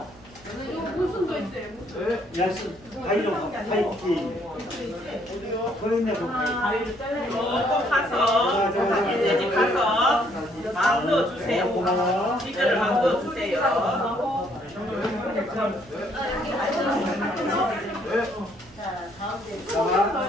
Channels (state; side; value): noise; right; hum, 24 dB below the sound